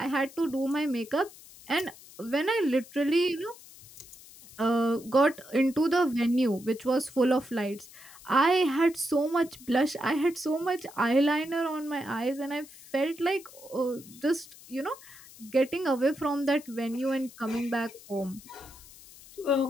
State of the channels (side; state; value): left; noise; hiss, 20 dB below the sound